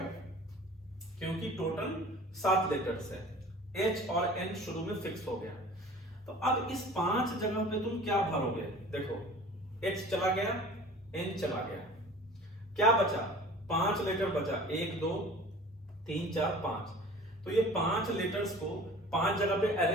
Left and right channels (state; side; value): normal; both; correlation 0.43